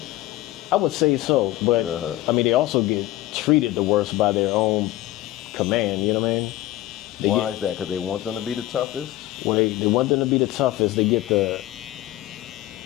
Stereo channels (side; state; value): right; quieter; 16.0 dB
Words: I would say so, but I mean, they also get treated the worst by their own command. You know what I mean? Why is that? Because they want them to be the toughest? Well, they want them to be the toughest. They get